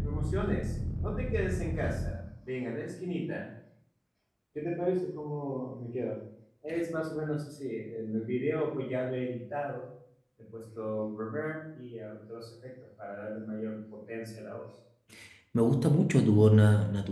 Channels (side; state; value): both; identical; correlation 1.00